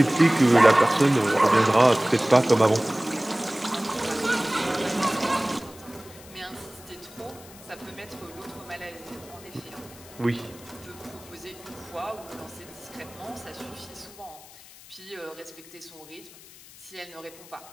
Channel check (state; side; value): noise; left; hiss, 20 dB below the sound